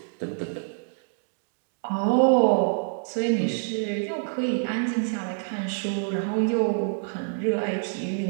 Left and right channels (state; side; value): silent; left; digital silence